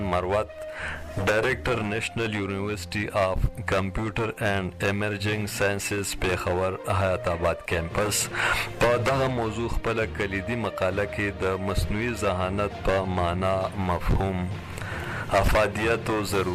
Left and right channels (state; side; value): identical; both; correlation 1.00